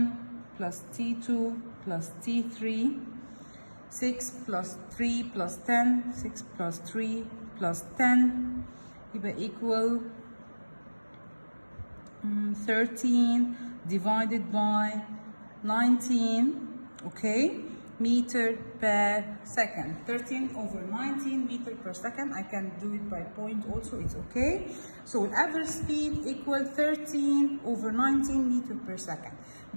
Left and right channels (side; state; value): both; inverted; correlation -1.00